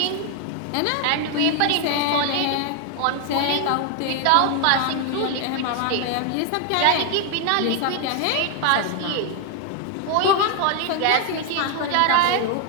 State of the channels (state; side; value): different; both; correlation 0.00